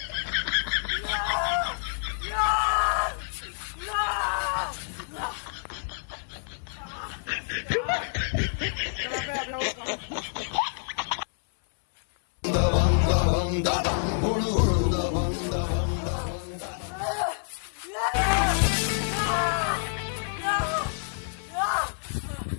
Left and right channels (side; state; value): right; silent; 60 dB below the other